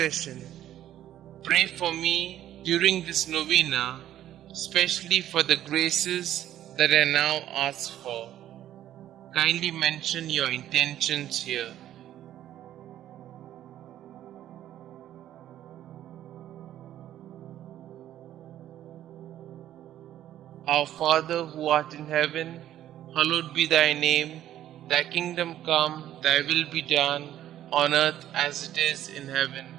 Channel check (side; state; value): left; quieter; 12.2 dB